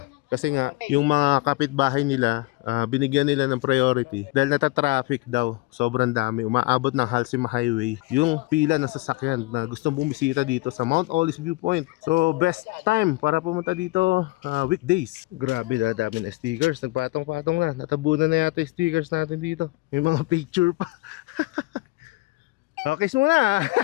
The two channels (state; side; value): quieter; right; 22.1 dB